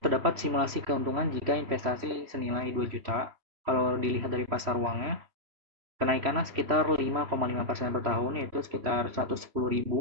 simulasi keuntungan jika investasi senilai 2 juta. Kalau dilihat dari pasar uangnya, kenaikannya sekitar 5,5% per tahun, yaitu sekitar 110.000.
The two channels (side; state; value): left; late; 3.0 ms